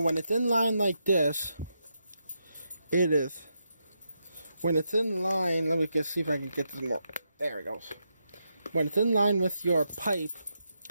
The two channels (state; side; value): inverted; both; correlation -0.83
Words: it's in line like this, it is. When it's in line, let me just see if I can get this more. There it goes. When it's in line with your pipe,